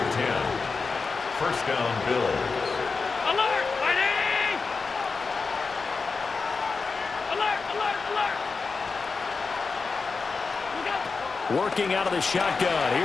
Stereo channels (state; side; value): quieter; right; 4.5 dB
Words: 10. First down, Bills. Alert! Fighting! Alert! Alert! Alert! Working out of the shotgun.